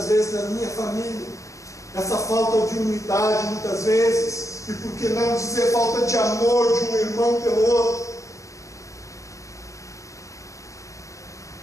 vezes na minha família essa falta de unidade, muitas vezes, e por que não dizer falta de amor de um irmão pelo outro.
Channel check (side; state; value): right; late; 0.15 ms